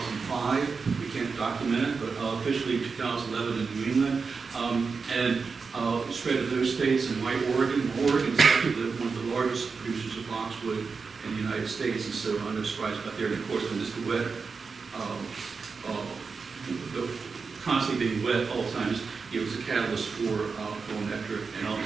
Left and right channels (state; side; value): quieter; left; 4.9 dB